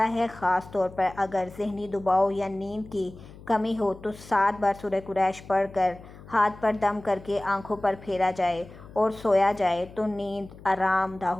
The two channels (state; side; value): noise; left; hum, 18 dB below the sound